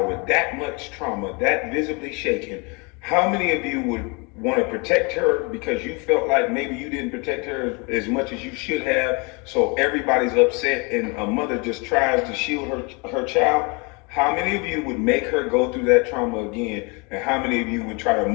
with that much trauma, that visibly shaken, how many of you would want to protect her because you felt like maybe you didn't protect her as much as you should have? So everybody's upset and a mother just tries to shield her child. How many of you would make her go through that trauma again? And how many of you would try to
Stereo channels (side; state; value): right; quieter; 30.6 dB